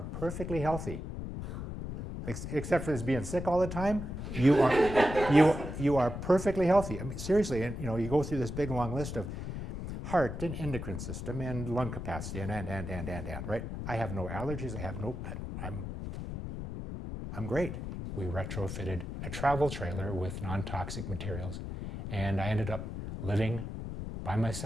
perfectly healthy. Except for this being sick all the time, you are perfectly healthy." I mean, seriously, and you go through this big long list of heart and endocrine system and lung capacity and, right? I have no allergies, I'm great. We retrofitted a travel trailer with non-toxic materials, and I ended up living by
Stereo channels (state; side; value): noise; left; rumble, 6 dB below the sound